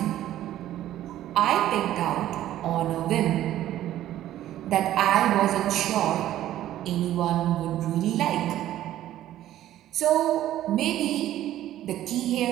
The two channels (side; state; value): left; quieter; 13.1 dB